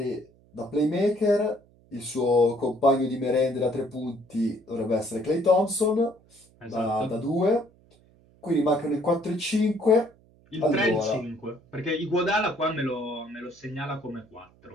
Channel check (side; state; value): right; noise; hum, 30 dB below the sound